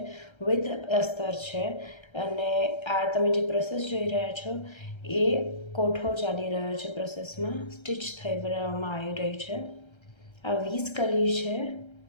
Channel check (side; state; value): right; late; 1.3 ms